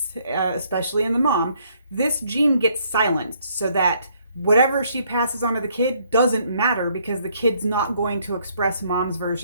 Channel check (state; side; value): inverted; both; correlation -0.67